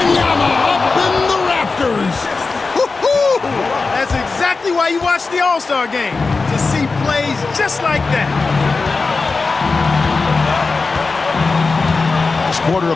up in the rafters. That's exactly why you watch the All-Star game, to see plays just like that. Last quarter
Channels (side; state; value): right; quieter; 4.1 dB